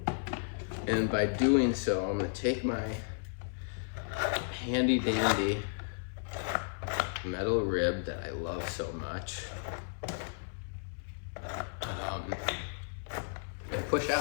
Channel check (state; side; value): silent; right; 55 dB below the other